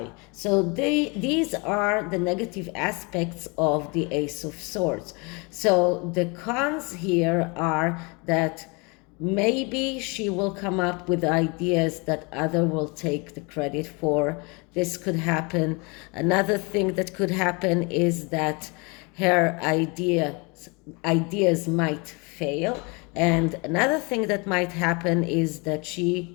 So these are the negative aspects of the Ace of Swords. So the cons here are that maybe she will come up with ideas that other will take the credit for. This could happen. Another thing that could happen is that her ideas might fail, And another thing that might happen is that she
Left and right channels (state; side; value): quieter; right; 29.7 dB